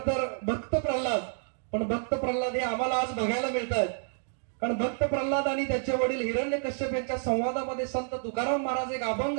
तर भक्त प्रल्हाद, पण भक्त प्रल्हाद हे आम्हाला आज बघायला मिळत आहेत. कारण भक्त प्रल्हाद आणि त्याचे वडील हिरण्यकश्यप यांच्या संवादामध्ये संत तुकाराम महाराज एक अभंग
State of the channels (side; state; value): left; silent; digital silence